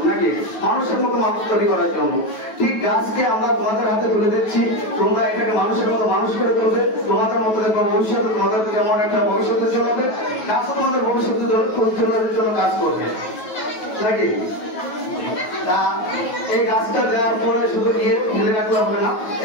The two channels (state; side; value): late; right; 9.3 ms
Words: নাকি মানুষের মতো মানুষ তৈরি করার জন্য। ঠিক গাছকে আমরা তোমাদের হাতে তুলে দিচ্ছি, তোমরা এটাকে মানুষের মতো মানুষ করে তুলবে, তোমাদের মতো দেখবো ভবিষ্যতে তোমাদের যেমন একটা ভবিষ্যতে চলাবে, গাছও তোমাদের ভবিষ্যতে জন্য কাজ করবে, নাকি? তা এই গাছটা দেওয়ার পরে শুধু গিয়ে ফেলে রাখলে হবে না,